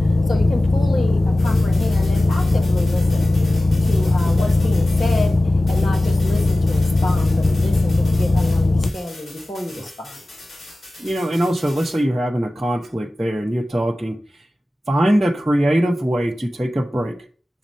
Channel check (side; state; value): both; normal; correlation 0.96